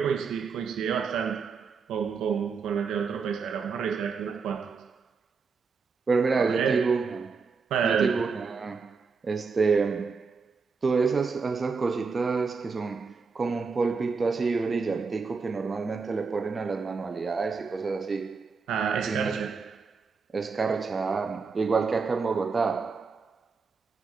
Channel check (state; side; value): quieter; left; 5.0 dB